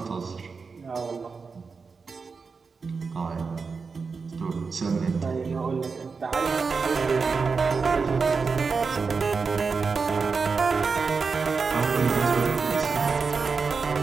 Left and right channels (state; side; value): quieter; left; 4.9 dB